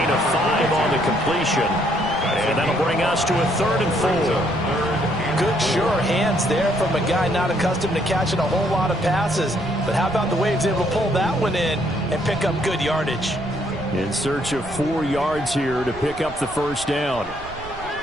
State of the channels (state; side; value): noise; right; rumble, 16 dB below the sound